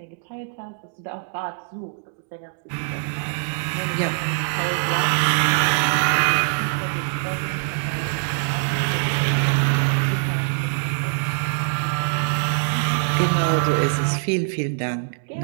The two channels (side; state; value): left; silent; digital silence